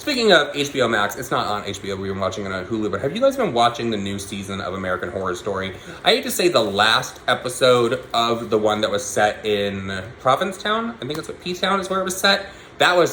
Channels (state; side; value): identical; both; correlation 1.00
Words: of HBO Max, it's not on HBO, we've been watching it on Hulu, but have you guys been watching the new season of American Horror Story? I hate to say the last episode of the one that was set in Provincetown, I think it's what P-Town is where it was set. That was